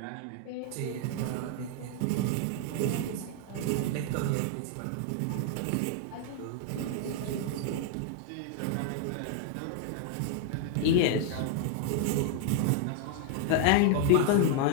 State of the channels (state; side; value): different; both; correlation 0.00